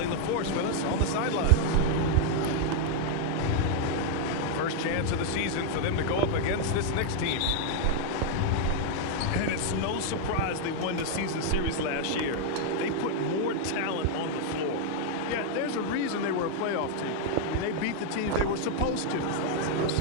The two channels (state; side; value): different; both; correlation 0.00